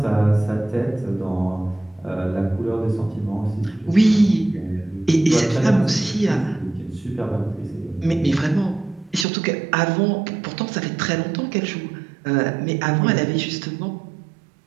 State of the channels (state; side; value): drops out; left; at 9.2 s